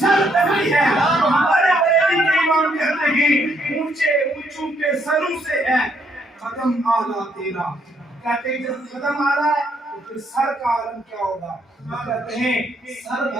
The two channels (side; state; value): both; normal; correlation 0.72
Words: پہ بھی ہے. ہمارے بریلی کے امام کہتے ہیں اونچے اونچوں کے سروں سے ہے قدم اعلیٰ تیرا. کہتے ہیں جب قدم اعلیٰ ہے تو پھر سر کا عالم کیا ہوگا؟ کہتے ہیں